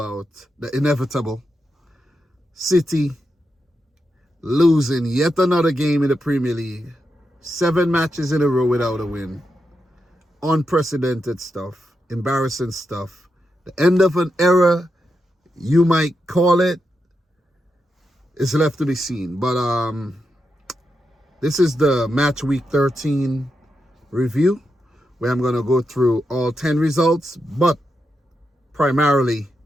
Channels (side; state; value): both; normal; correlation 0.86